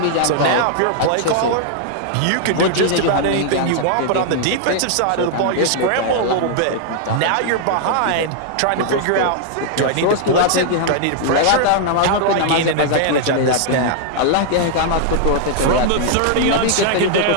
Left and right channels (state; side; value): different; both; correlation -0.01